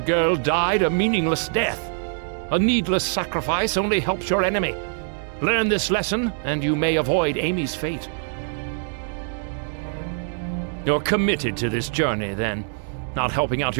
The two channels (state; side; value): silent; left; digital silence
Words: girl died a meaningless death. A needless sacrifice only helps your enemy. Learn this lesson, and you may avoid Amy's fate. You're committed to this journey, then. Not helping out